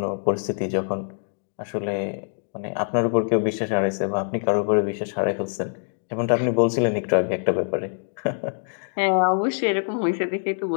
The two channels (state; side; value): silent; right; digital silence